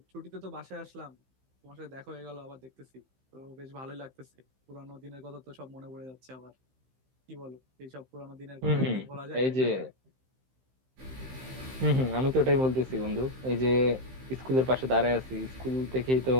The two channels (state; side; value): late; left; 15 ms